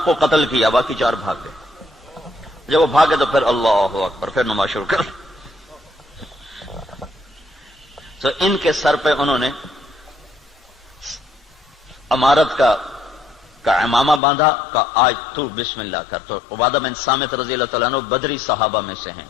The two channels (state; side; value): drops out; right; at 14.2 s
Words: کو قتل کیا، باقی 4 بھاگ گئے. جب وہ بھاگے تو پھر اللہ اکبر، پھر نماز شروع کر. تو ان کے سر پہ انہوں نے امارت کا امامہ باندھا کہ آج تو بسم اللہ کر. تو عبادہ بن صامت رضی اللہ تعالیٰ عنہ بدری صحابہ میں سے ہیں،